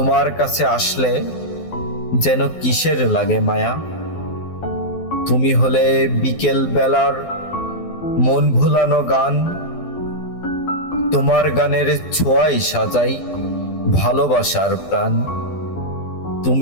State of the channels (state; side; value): late; right; 12 ms